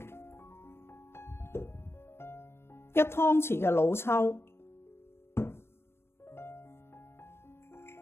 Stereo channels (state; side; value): late; right; 0.12 ms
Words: 1湯匙嘅老抽